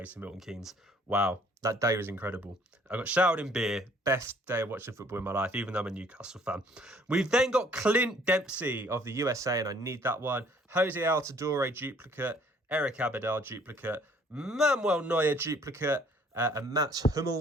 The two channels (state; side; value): normal; both; correlation 0.59